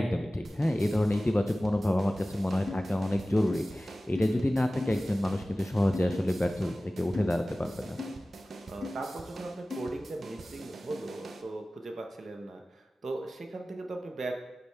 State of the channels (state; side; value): normal; both; correlation 0.97